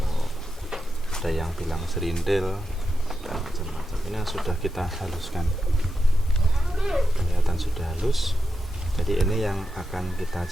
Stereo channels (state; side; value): normal; both; correlation 0.88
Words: ada yang bilang serindil dan macam-macam. Ini yang sudah kita haluskan, kelihatan sudah halus. Jadi ini yang akan kita